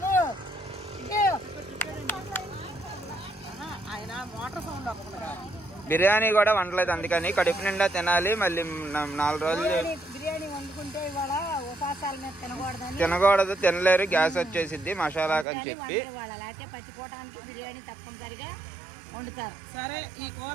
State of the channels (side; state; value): left; drops out; at 15.5 s